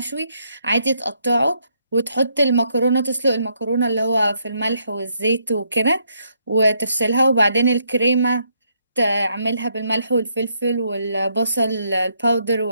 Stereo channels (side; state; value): both; inverted; correlation -0.74